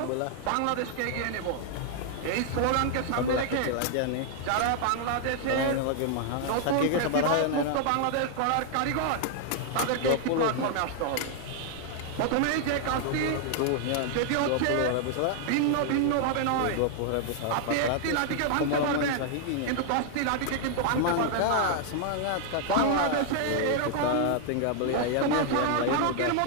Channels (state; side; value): different; both; correlation 0.00